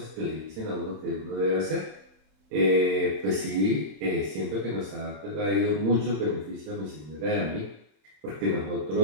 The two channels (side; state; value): left; late; 27 ms